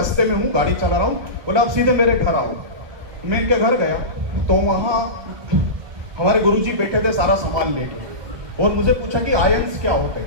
में हूँ, गाड़ी चला रहा हूँ। बोला आप सीधे मेरे घर आओ। मैं इनके घर गया तो वहाँ हमारे गुरुजी बैठे थे सारा सामान लेके, और मुझे पूछा कि आयंस क्या होते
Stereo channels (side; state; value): left; late; 1.2 ms